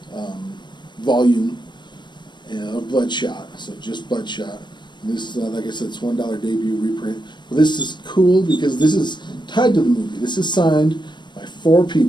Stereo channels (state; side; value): late; right; 0.22 ms